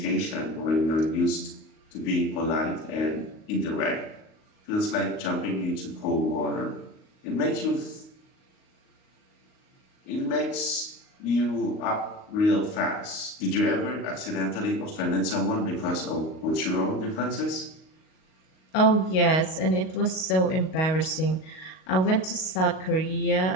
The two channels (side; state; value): right; late; 38 ms